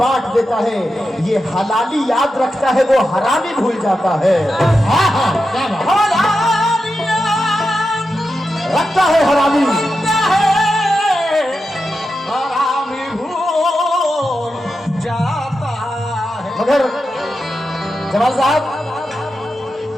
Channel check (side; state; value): both; normal; correlation 0.89